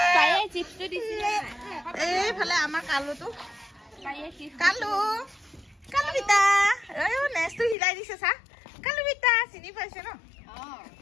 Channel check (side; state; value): right; drops out; at 7.8 s